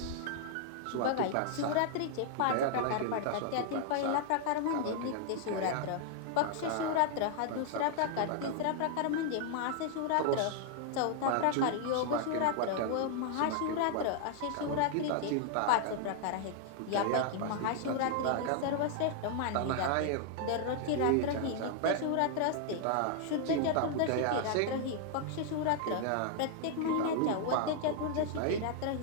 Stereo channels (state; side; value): different; both; correlation -0.01